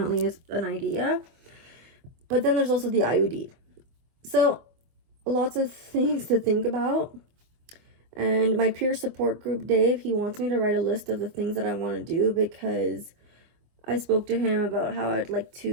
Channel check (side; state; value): left; late; 24 ms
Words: an idea. But then there's also the IUD. So lots of things to think about. And my peer support group, Dave, he wants me to write a list of the things that I want to do, because I spoke to him about how I'd like